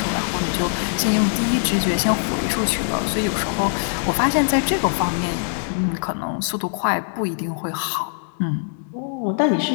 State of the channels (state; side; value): silent; right; digital silence